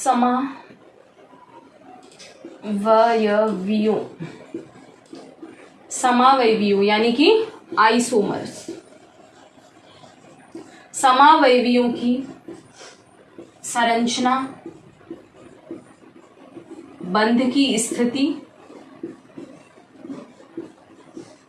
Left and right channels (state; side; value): identical; both; correlation 1.00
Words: समावयवियों यानी कि आइसोमर्स, समावयवियों की संरचना, बंध की स्थिति,